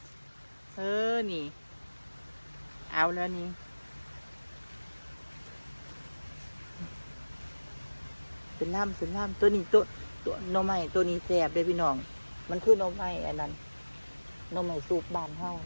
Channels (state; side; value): inverted; both; correlation -1.00